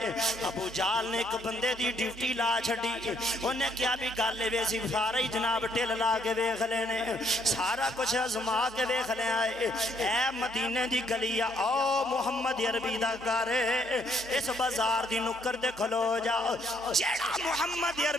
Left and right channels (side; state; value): both; normal; correlation 0.69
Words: ہے۔ ابو جہل نے ایک بندے دی ڈیوٹی لا چھڑی انہیں کیا بھی گالے ویسی سارا ہی جناب ٹل لا کے ویکھ لینے سارا کچھ ازما کے ویکھ لے آئے اے مدینے دی گلیا او محمد عربی دا گھر اس بازار دی نکر دے کھلو جا جیڑا محمد